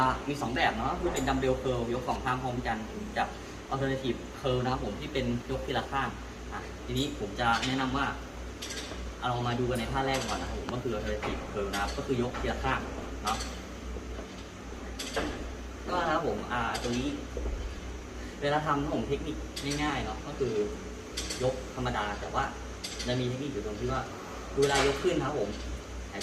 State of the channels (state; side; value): identical; both; correlation 1.00